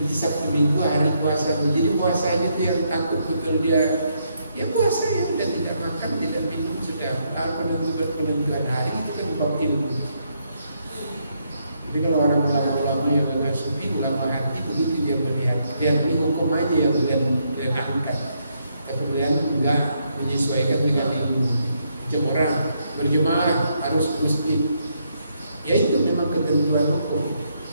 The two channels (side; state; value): both; inverted; correlation -0.76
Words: Sabtu Minggu hari puasa. Jadi puasanya itu yang takut betul dia. Ya puasa ya udah tidak makan, tidak minum, sudah penentuan hari itu kan bab ilmu. Jadi kalau orang ulama-ulama yang agak sufi, ulama hati begitu dia melihat. Lihat ini hukum aja yang kalian angkat. Kemudian enggak menyesuaikan dengan ilmu. Macam orang berjemaah harus ke masjid. Ya itu memang ketentuan hukum.